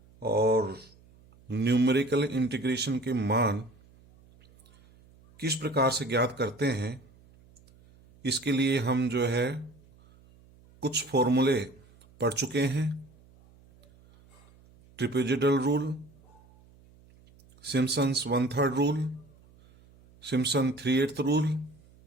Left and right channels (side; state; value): right; noise; hum, 27 dB below the sound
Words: और न्यूमेरिकल इंटीग्रेशन के मान किस प्रकार से ज्ञात करते हैं, इसके लिए हम जो है कुछ फॉर्मूले पढ़ चुके हैं। Trapezoidal rule, Simpson's 1/3 rule, Simpson 3/8 rule